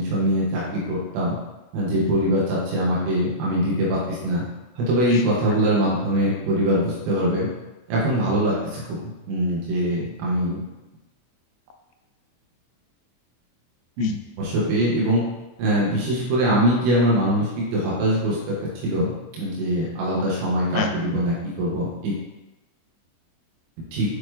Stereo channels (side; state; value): left; late; 24 ms